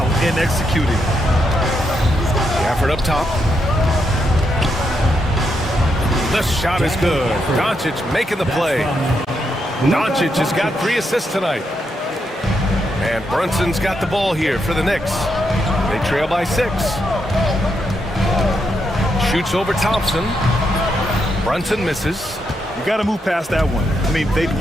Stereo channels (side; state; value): both; normal; correlation 0.81